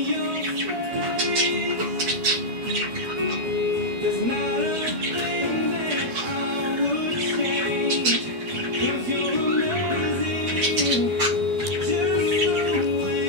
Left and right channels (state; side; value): late; left; 12 ms